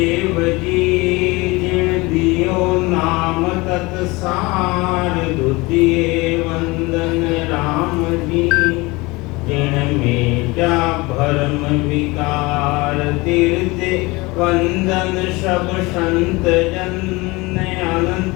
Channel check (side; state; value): right; quieter; 23.4 dB